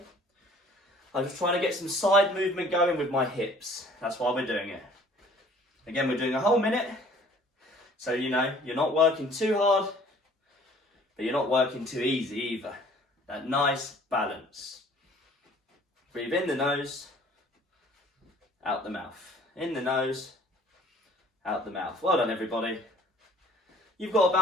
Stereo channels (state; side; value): normal; both; correlation 0.53